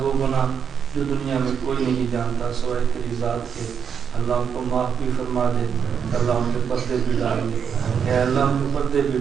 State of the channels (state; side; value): quieter; left; 7.2 dB